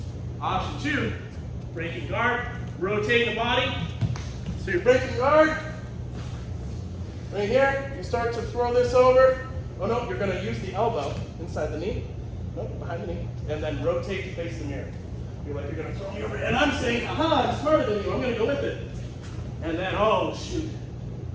Option two, breaking guard, rotate the body. So you're breaking guard. Right here, you start to throw this over. Oh no, you're going to use the elbow inside the knee. Nope, behind the knee. And then rotate to face the mirror. You're like, you're going to throw me over. And I'm saying, aha, I'm smarter than you. I'm going to go with it. And then, oh shoot,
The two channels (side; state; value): both; identical; correlation 1.00